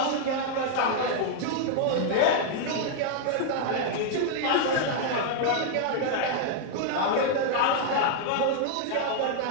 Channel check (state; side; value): different; both; correlation 0.00